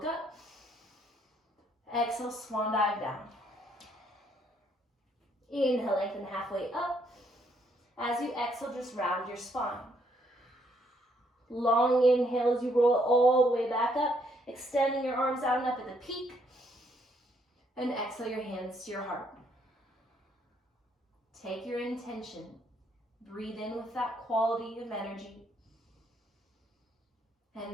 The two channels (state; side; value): normal; both; correlation 0.70